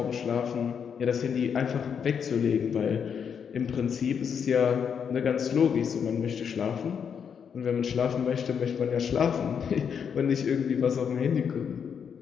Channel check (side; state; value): right; quieter; 7.2 dB